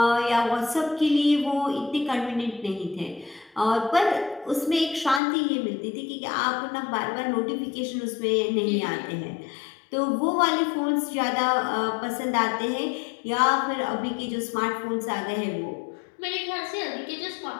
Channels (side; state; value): right; drops out; at 5.2 s